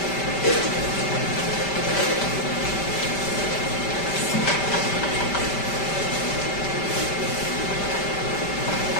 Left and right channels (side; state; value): right; late; 5.1 ms